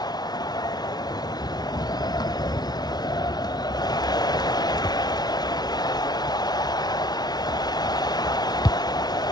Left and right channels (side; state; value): right; late; 0.19 ms